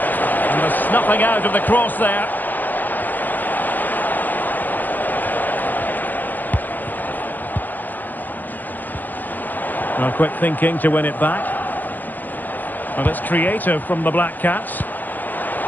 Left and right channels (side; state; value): right; late; 0.085 ms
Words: the snuffing out of the cross there. Well, quick thinking to win it back. Well, it's creative from the Black Cats.